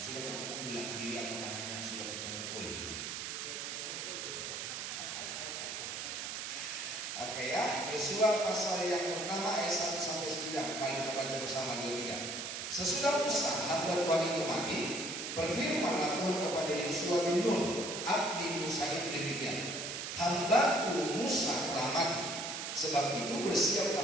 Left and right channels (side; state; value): right; noise; hiss, 5 dB below the sound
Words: sudah ketemu bilang kiri atau kanannya sudah ketemu. Oi. Oke ya, Yosua pasal yang pertama ayat 1 sampai 9. Mari kita baca bersama 2-3. Sesudah Musa hamba Tuhan itu mati, berfirmanlah Tuhan kepada Yosua bin Nun, abdi Musa itu demikian. Hambaku Musa telah mati. Sebab itu bersiaplah